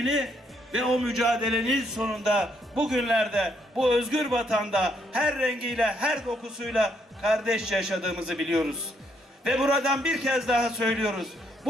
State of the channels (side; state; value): both; normal; correlation 0.73